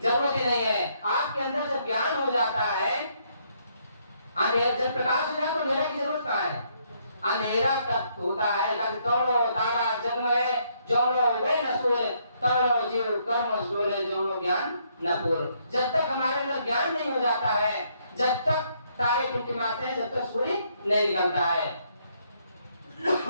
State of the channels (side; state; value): both; inverted; correlation -0.71